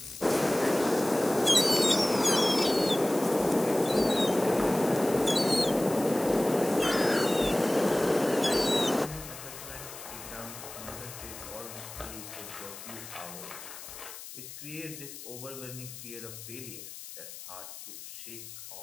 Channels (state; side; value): noise; left; hiss, 13 dB below the sound